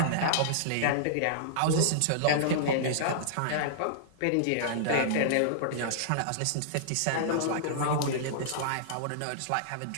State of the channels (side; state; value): both; different; correlation -0.02